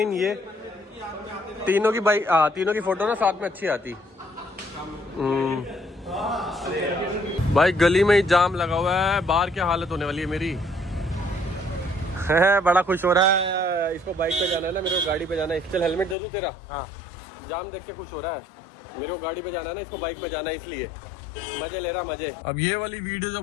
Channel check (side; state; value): right; drops out; at 16.2 s